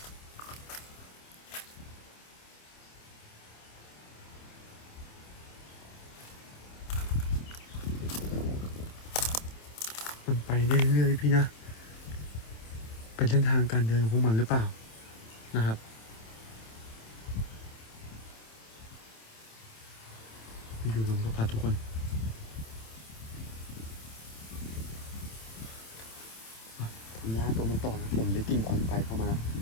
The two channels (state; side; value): late; right; 27 ms